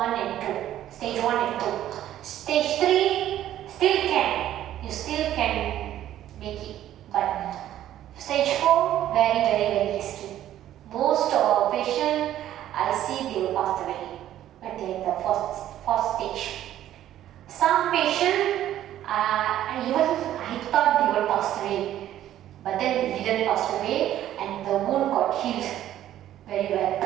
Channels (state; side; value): quieter; left; 12.3 dB